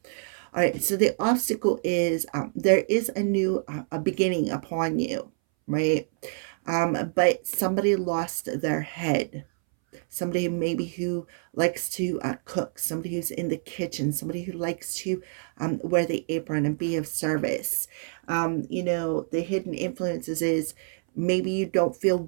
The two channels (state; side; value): silent; left; 60 dB below the other